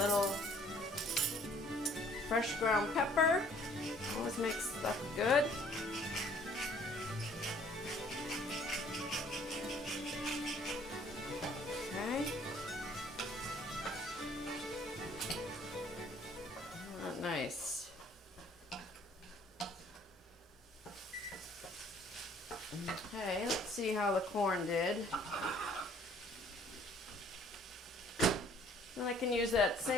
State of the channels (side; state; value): both; normal; correlation 0.58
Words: fresh ground pepper. Always makes stuff good. Nice. Okay, let's see how the corn did. Then I can use that